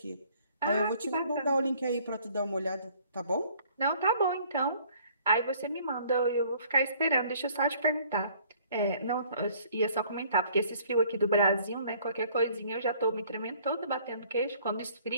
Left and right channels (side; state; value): both; inverted; correlation -0.58